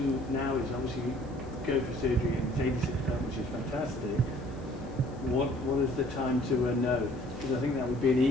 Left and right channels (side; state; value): left; noise; hiss, 29 dB below the sound